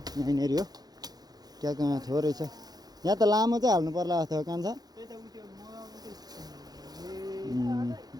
यहीँनिर हो क्या कहाँ थोरै छ यहाँ त लामो चाहिँ हाल्नु पर्ला जस्तो कान्छ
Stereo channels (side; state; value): left; late; 0.19 ms